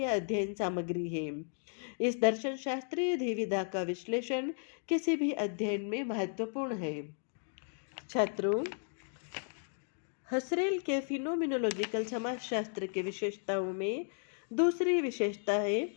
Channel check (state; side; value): silent; right; 55 dB below the other